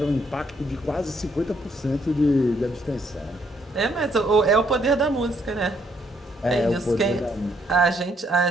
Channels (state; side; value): normal; both; correlation 0.71